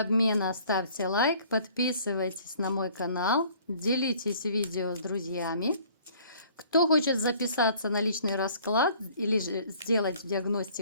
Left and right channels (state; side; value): inverted; both; correlation -0.55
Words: ставьте лайк, подписывайтесь на мой канал, делитесь видео с друзьями. Кто хочет записаться на личный расклад или же сделать